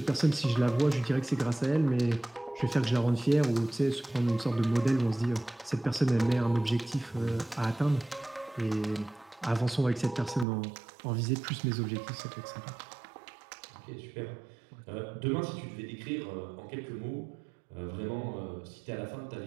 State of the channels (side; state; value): left; drops out; at 10.5 s